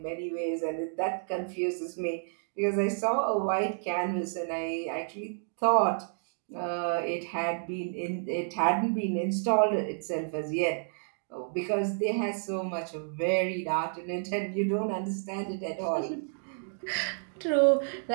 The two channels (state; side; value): silent; left; digital silence